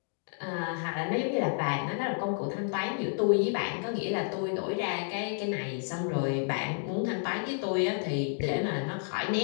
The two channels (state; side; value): silent; right; digital silence